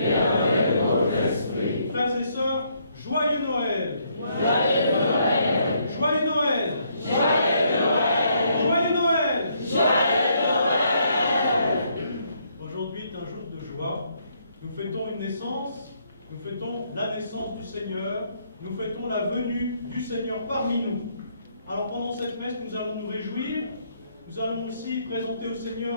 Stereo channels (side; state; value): both; inverted; correlation -0.71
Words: avec votre esprit. Frères et sœurs, joyeux Noël! Joyeux Noël! Joyeux Noël! Joyeux Noël! Joyeux Noël! Joyeux Noël! Aujourd'hui est un jour de joie. Nous fêtons une naissance, nous fêtons la naissance du Seigneur, nous fêtons la venue du Seigneur parmi nous. Alors pendant cette messe, nous allons nous réjouir, nous allons aussi présenter au